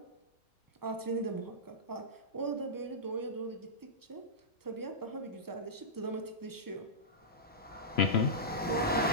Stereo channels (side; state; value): both; normal; correlation -0.14